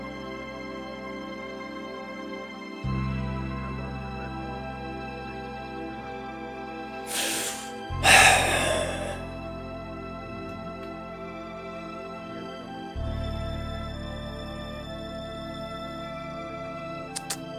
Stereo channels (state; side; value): identical; both; correlation 1.00